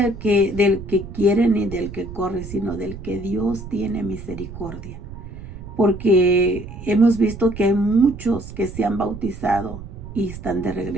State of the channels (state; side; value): noise; right; rumble, 12 dB below the sound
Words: que quiere ni del que corre, sino del que Dios tiene misericordia. Porque hemos visto que hay muchos que se han bautizado y están de